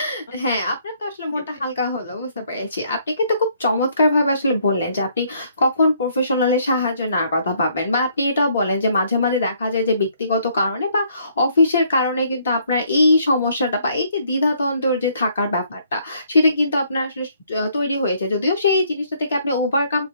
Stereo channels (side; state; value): both; inverted; correlation -0.66